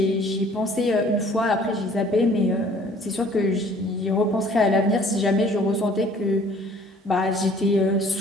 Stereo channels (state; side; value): normal; both; correlation 0.55